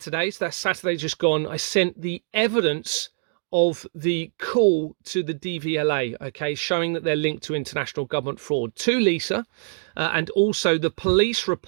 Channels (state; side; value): silent; left; digital silence